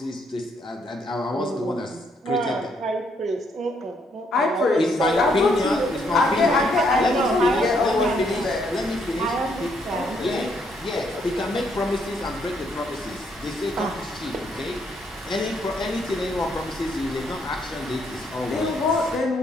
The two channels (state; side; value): normal; both; correlation 0.72